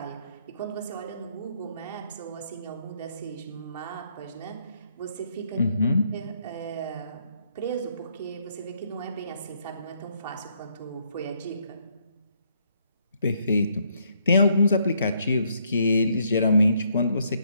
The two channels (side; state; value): both; inverted; correlation -0.72